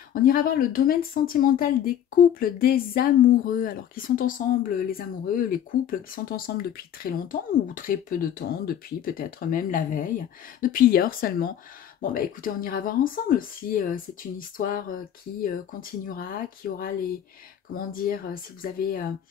On ira voir le domaine sentimental des couples, des amoureux, alors qui sont ensemble, les amoureux, les couples qui sont ensemble depuis très longtemps ou très peu de temps, depuis peut-être même la veille, depuis hier seulement. Bon bah écoutez, on ira voir ensemble si c'est une histoire qui continuera, qui aura les, comment dire, si vous avez,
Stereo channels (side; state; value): right; quieter; 10.0 dB